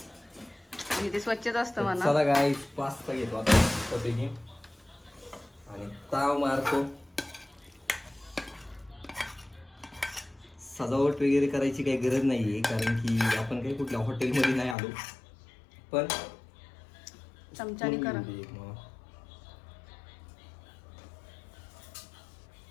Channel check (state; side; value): drops out; right; at 14.8 s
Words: आणि ते स्वच्छच असतं म्हणा. चला गाईस पास्ता घेतो आता मस्तपैकी आणि ताव मारतो. सजावट वगैरे करायची काही गरज नाहीये. कारण की आपण काही कुठल्या हॉटेलमध्ये नाही आलो. पण चमच्याने करा.